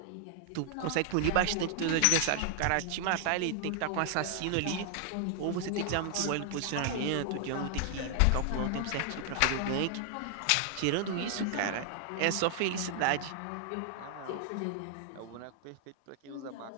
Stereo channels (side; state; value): both; different; correlation 0.00